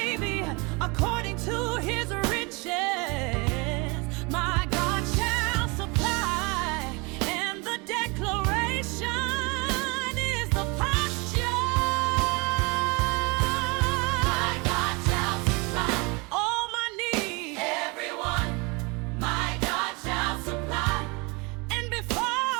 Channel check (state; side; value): quieter; left; 28.4 dB